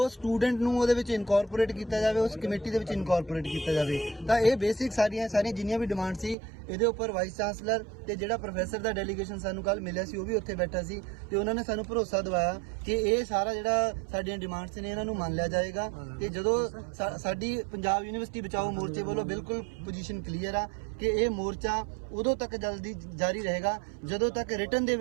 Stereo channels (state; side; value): drops out; left; at 6.4 s